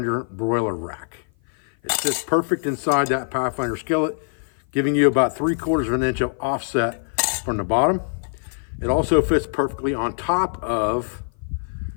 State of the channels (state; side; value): silent; right; 56 dB below the other